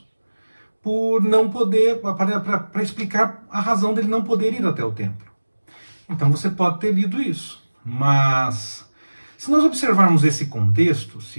por não poder, para explicar a razão dele não poder ir até o templo. Então você pode ter lido isso, mas se nós observarmos esse contexto,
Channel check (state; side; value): inverted; both; correlation -1.00